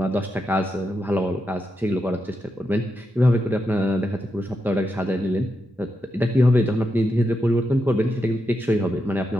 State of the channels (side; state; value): both; normal; correlation 0.85